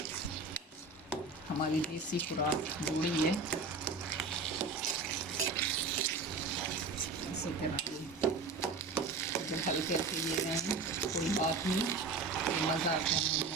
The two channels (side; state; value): left; quieter; 4.0 dB